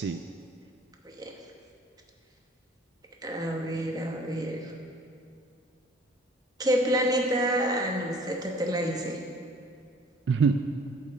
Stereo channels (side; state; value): both; normal; correlation 0.52